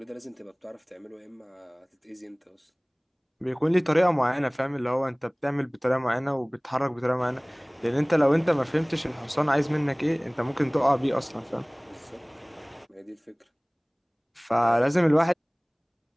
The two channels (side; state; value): both; identical; correlation 1.00